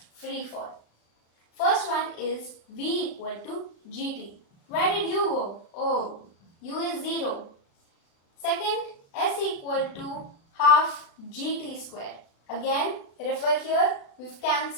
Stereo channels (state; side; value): late; right; 36 ms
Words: free fall. First one is V equal to GT. Where did U go? Oh, U is 0. Second, S equal to half GT square. Again, refer here, we've